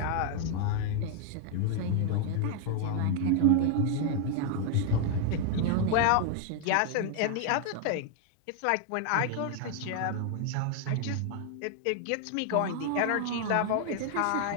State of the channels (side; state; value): both; different; correlation 0.00